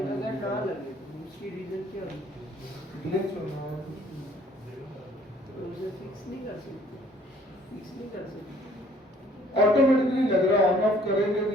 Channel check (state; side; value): normal; both; correlation 0.58